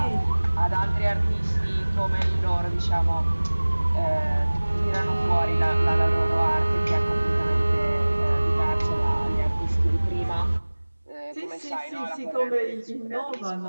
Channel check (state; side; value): inverted; both; correlation -1.00